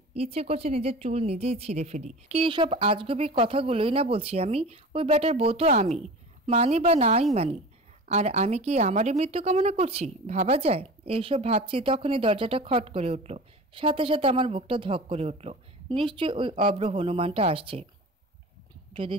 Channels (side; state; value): both; normal; correlation 0.35